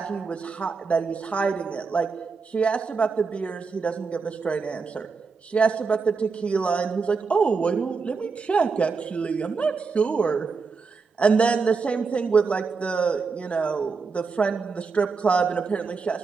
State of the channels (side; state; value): left; quieter; 4.9 dB